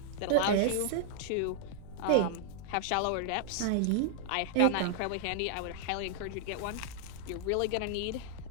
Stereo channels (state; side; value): different; both; correlation 0.00